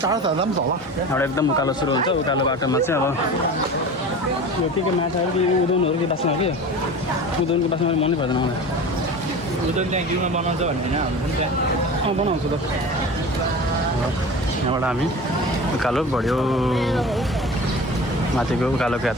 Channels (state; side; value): normal; both; correlation 0.34